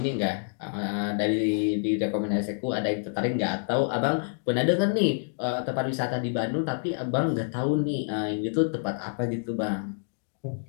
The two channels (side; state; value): right; silent; digital silence